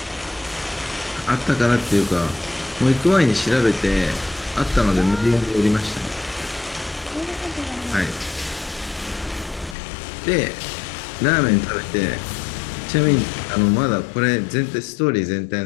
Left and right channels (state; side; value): drops out; right; at 9.8 s